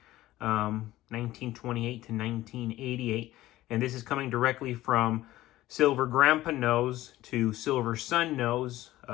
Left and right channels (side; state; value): right; quieter; 15.9 dB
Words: 1928 to 1988, and this is coming directly from Silver Grandpa Knows to Silver Son Knows,